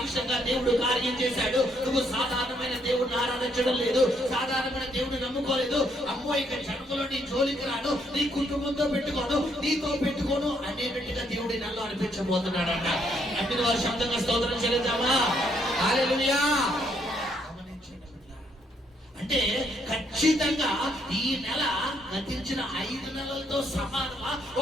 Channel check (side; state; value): both; normal; correlation 0.72